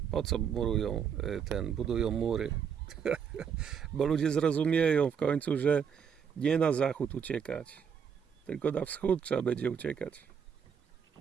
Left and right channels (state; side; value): quieter; left; 7.2 dB